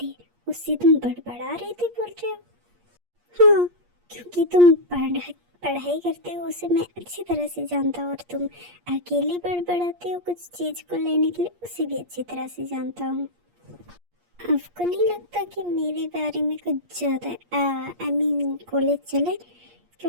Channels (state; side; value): late; left; 8.5 ms